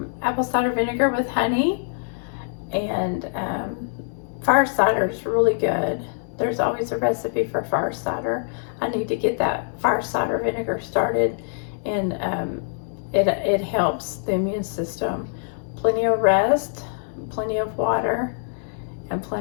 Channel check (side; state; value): right; silent; digital silence